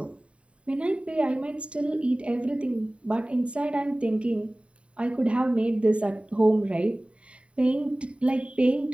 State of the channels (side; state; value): left; late; 0.061 ms